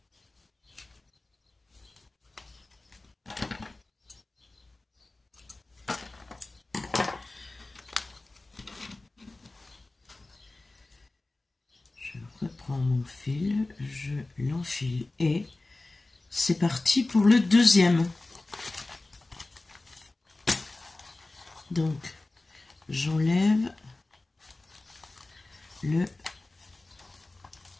Je reprends mon fil, je l'enfile et c'est parti pour le deuxième. Donc, j'enlève le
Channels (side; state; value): right; quieter; 3.0 dB